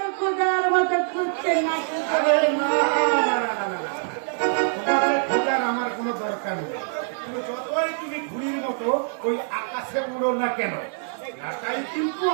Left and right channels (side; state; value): left; silent; digital silence